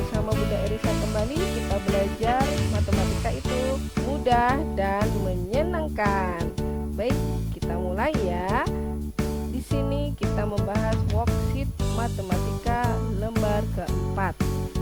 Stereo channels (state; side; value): identical; both; correlation 1.00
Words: Bunda Erisa kembali kita belajar matematika itu mudah dan menyenangkan. Baik, kita mulai ya. Di sini kita membahas worksheet matematika lembar keempat,